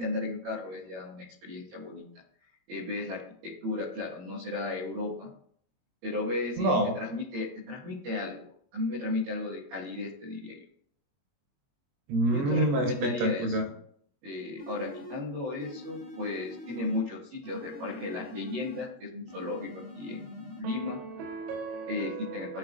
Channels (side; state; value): left; late; 22 ms